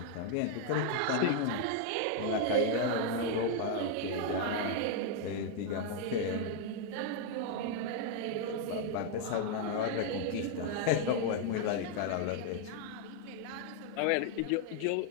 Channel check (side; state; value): both; different; correlation 0.00